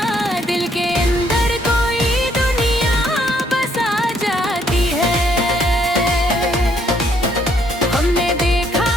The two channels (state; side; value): normal; both; correlation 0.68